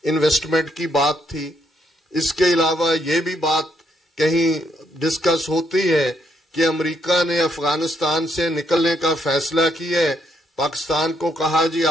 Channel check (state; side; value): normal; both; correlation 0.74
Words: انویسٹمنٹ کی بات تھی، اس کے علاوہ یہ بھی بات کہیں ڈسکس ہوتی ہے کہ امریکہ نے افغانستان سے نکلنے کا فیصلہ کیا ہے، پاکستان کو کہا جی